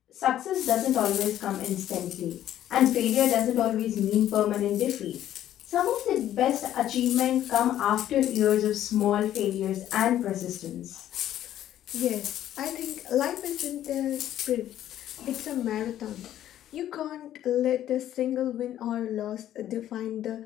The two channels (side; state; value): right; quieter; 12.0 dB